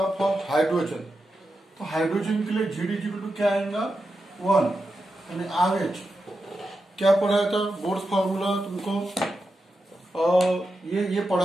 for hydrogen. तो hydrogen के लिए GD equal to क्या आएगा 1 यानी RH क्या पढ़ाया था boards formula तुमको ये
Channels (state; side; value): normal; both; correlation 0.89